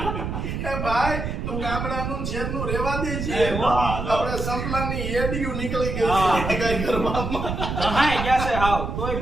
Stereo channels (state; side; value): noise; right; rumble, 3 dB below the sound